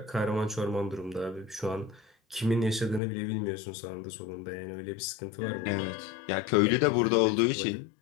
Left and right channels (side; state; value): right; drops out; at 3.0 s